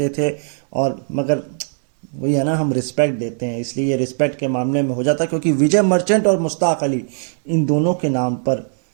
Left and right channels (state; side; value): silent; left; digital silence